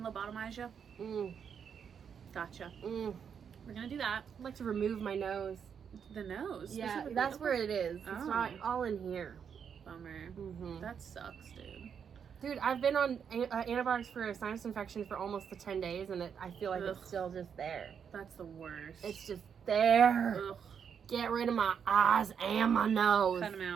lobotomize you. Mm. Gotcha. Mm. We're gonna do that. I'd like to remove my nose. The nose. Yeah, specifically. that's where it is. It's Oh. not all in here. Bummer. Mm-hmm. That sucks, dude. Dude, I've been on antibiotics for a sinus infection for almost the 10 days, and I feel like Ugh. it's still just there. That's the worst. It's just there. Ugh. Get rid of my eyes and my nose. Cut them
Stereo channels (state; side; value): quieter; left; 7.3 dB